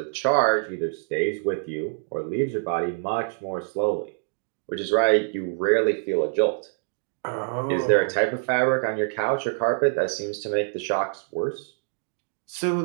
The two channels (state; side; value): silent; left; digital silence